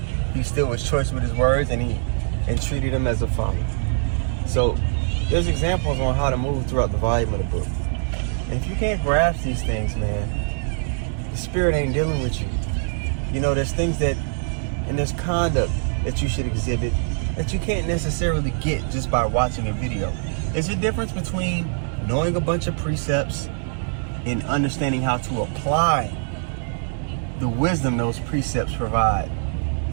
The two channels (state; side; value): silent; left; 62 dB below the other